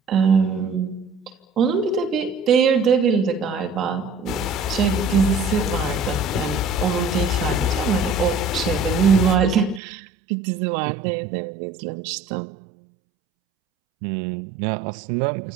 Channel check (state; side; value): drops out; left; at 9.8 s